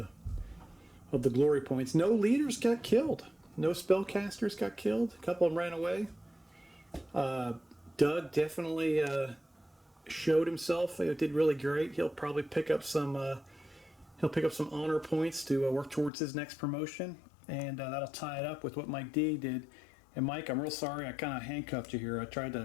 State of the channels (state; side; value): drops out; right; at 16.1 s